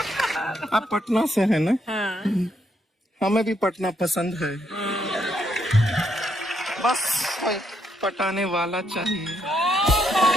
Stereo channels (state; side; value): normal; both; correlation 0.76